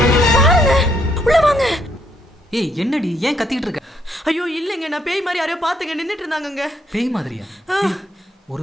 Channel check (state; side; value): normal; both; correlation 0.73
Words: பாருங்க உள்ள வாங்க. ஏய் என்னடி ஏன் கத்திட்டு இருக்க? ஐயோ இல்லங்க, நான் பேய் மாதிரி யாரையோ பாத்துங்க நின்னுட்டு இருந்தாங்கங்க. பேய் மாதிரியா?